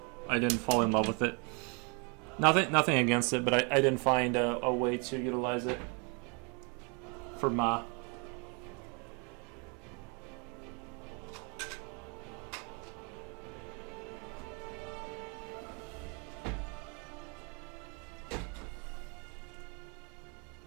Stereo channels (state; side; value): quieter; left; 34.1 dB